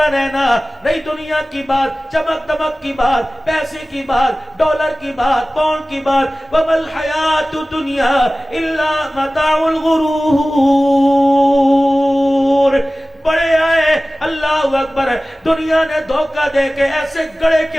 رہنا. نہیں دنیا کی بات، چمک دمک کی بات، پیسے کی بات، ڈالر کی بات، پاؤنڈ کی بات. وَمَا الْحَيَاةُ الدُّنْيَا إِلَّا مَتَاعُ الْغُرُورِ. بڑے آئے، اللہ اکبر. دنیا نے دھوکہ دے کے ایسے گڑے کے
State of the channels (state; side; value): normal; both; correlation 0.97